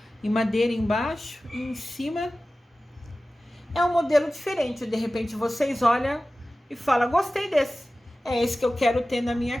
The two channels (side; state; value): both; normal; correlation 0.96